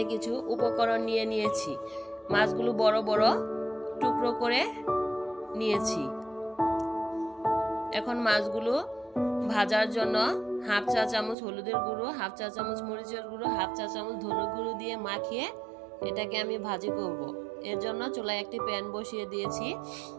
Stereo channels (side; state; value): left; drops out; at 11.4 s